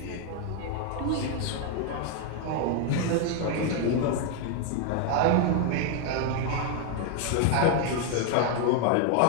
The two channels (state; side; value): different; both; correlation 0.00